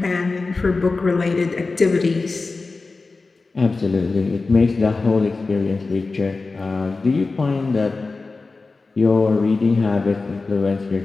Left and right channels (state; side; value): quieter; right; 3.8 dB